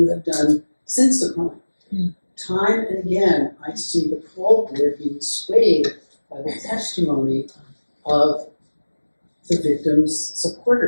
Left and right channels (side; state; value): both; inverted; correlation -1.00